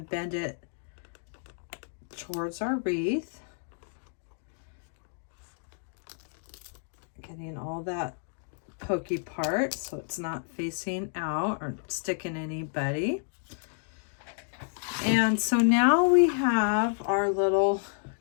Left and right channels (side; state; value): right; silent; digital silence